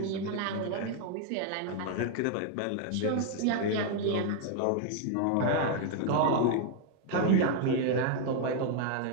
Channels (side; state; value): both; different; correlation 0.00